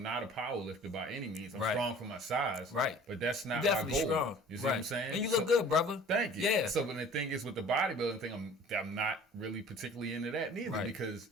not a power lifter by any means. I'm strong for my size. Right. But that's not my goal. Strong. You see what I'm saying? And you look good, brother. Thank you. Yeah. So, but the thing is with the bodybuilding thing, I'm not really particularly into that neither because,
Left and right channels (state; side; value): normal; both; correlation 0.47